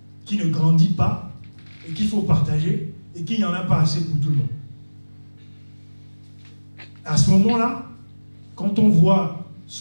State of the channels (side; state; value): both; inverted; correlation -1.00